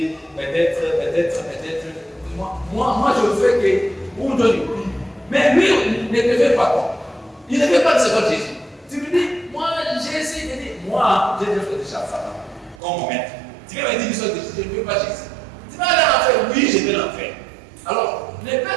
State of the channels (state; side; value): drops out; left; at 12.8 s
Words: peut-être. Moi, je fais que pour donner. Mais lui, ne te fait pas quoi. Il ne fait pas de ce que Jésus. Tu lui dis, moi, Jésus, il dit, moi, j'ai déjà fait déjà ça. Comme maître. Tu vas me dire, je ne veux pas Jésus. Tu vas aller en faire, oui, je vais l'en faire. Alors, ne